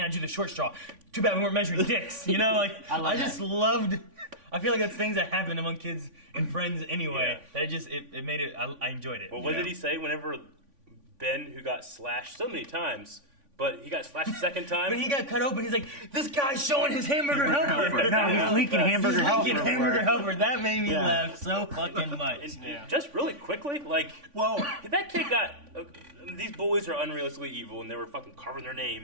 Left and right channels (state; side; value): late; left; 3.5 ms